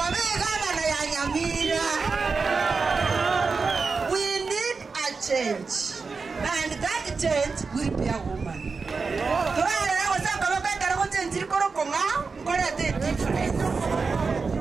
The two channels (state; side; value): quieter; left; 4.7 dB